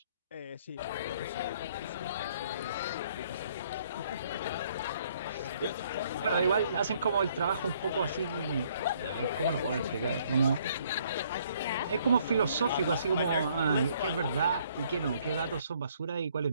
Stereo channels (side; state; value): both; inverted; correlation -0.65